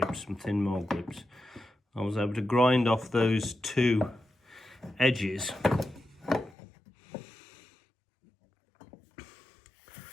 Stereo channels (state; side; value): drops out; right; at 6.6 s